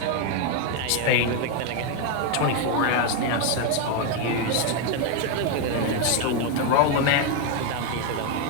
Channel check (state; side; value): different; both; correlation 0.01